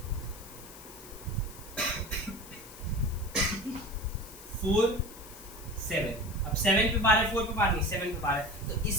4 7, अब 7 पे बार है, 4 पे बार नहीं, 7 पे बार है, तो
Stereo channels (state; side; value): noise; left; hiss, 17 dB below the sound